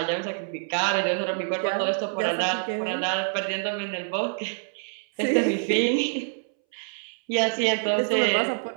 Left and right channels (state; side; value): silent; left; 61 dB below the other